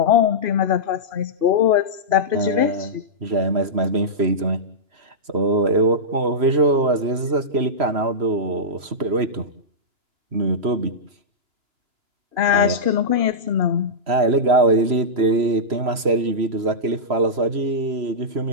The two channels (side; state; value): left; late; 3.1 ms